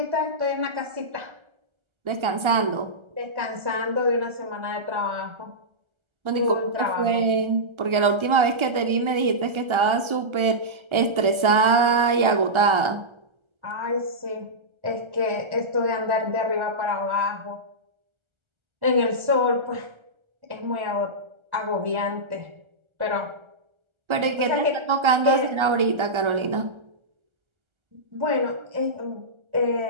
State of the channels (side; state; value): left; late; 1.3 ms